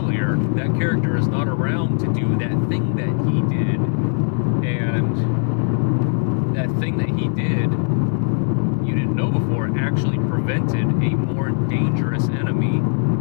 that character is not around to do that thing that he did. And that thing that he did, you didn't know before, actually prevented a more dangerous enemy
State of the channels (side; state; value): right; silent; 62 dB below the other